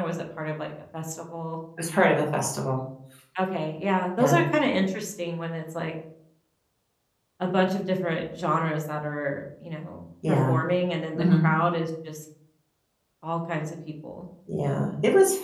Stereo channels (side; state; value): both; identical; correlation 1.00